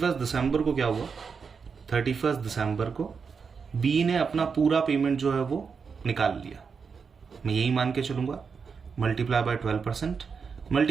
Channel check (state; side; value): quieter; left; 5.7 dB